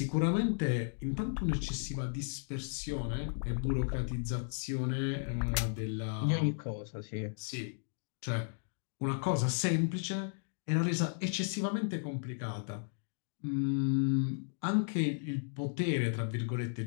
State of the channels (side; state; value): right; silent; digital silence